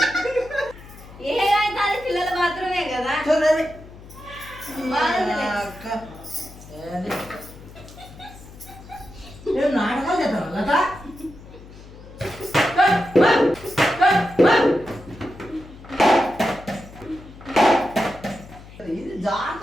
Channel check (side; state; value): left; noise; hum, 18 dB below the sound